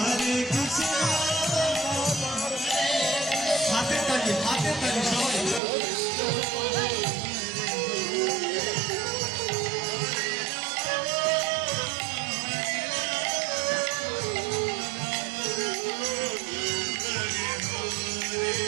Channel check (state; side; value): drops out; left; at 5.6 s